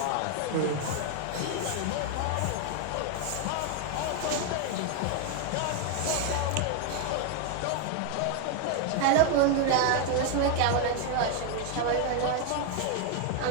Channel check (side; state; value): both; different; correlation 0.01